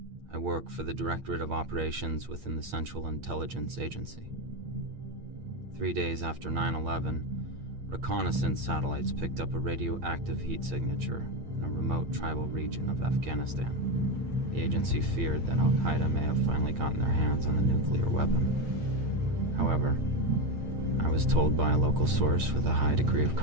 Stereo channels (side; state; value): left; late; 8.7 ms